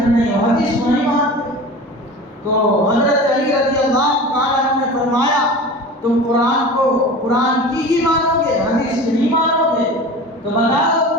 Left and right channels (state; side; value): normal; both; correlation 0.35